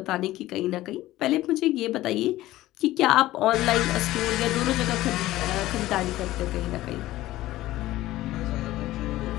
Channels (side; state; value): right; quieter; 16.1 dB